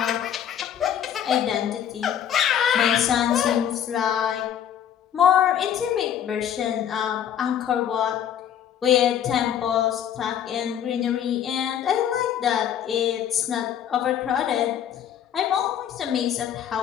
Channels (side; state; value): right; quieter; 9.6 dB